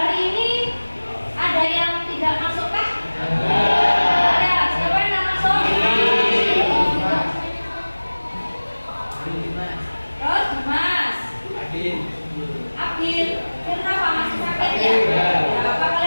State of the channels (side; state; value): both; inverted; correlation -1.00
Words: ini ada yang tidak masuk kah? Ada. Siapa yang tidak masuk? Abin, kenapa masih sakit ya? Apa